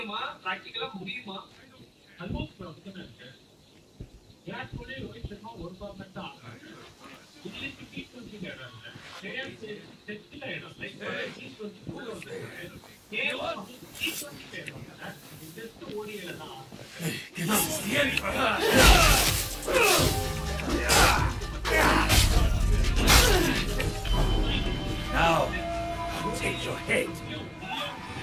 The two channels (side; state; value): both; identical; correlation 1.00